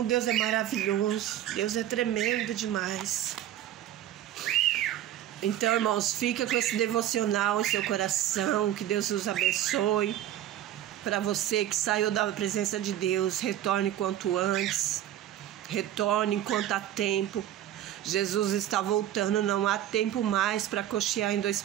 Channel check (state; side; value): quieter; left; 12.1 dB